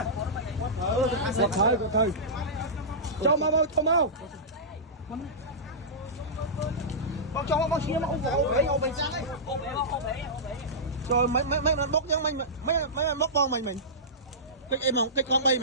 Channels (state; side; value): normal; both; correlation -0.17